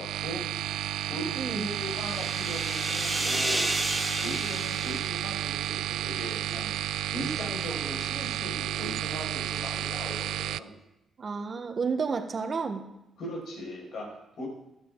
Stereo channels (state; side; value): quieter; left; 5.8 dB